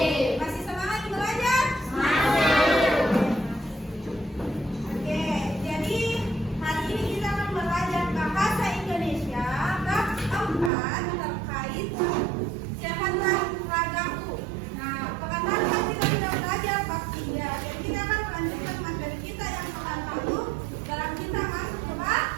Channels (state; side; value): drops out; left; at 10.7 s